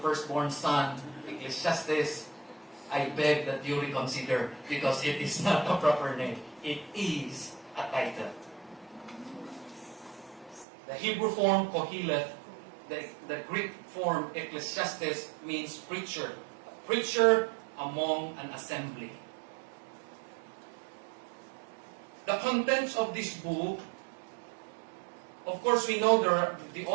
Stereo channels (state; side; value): drops out; left; at 10.7 s